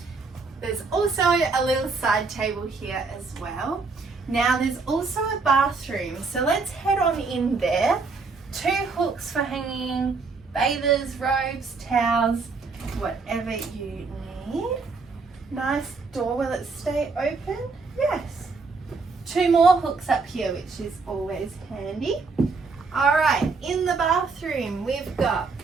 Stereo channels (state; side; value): quieter; left; 4.3 dB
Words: There's also a little side table here as well. Now there's also a bathroom, so let's head on in there. 2 hooks for hanging bathers, robes, towels, whatever you need. Nice door, will it stay open? Yes. 2 more hooks up here, which is always handy. All right, in the bathroom, we've got